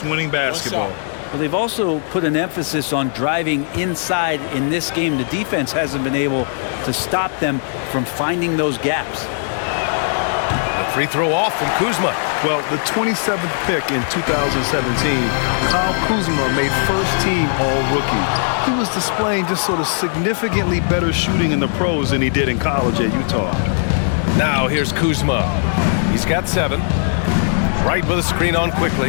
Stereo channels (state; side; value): silent; right; digital silence